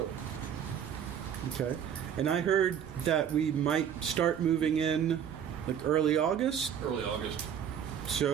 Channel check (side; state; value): left; quieter; 8.7 dB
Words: Okay. And I heard that we might start moving in like early August. Early August.